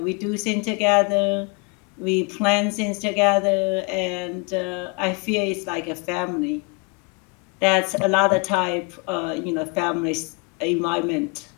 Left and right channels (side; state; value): right; quieter; 31.4 dB